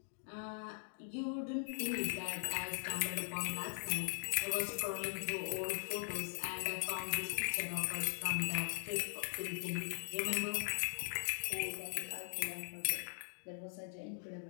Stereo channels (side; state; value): right; silent; digital silence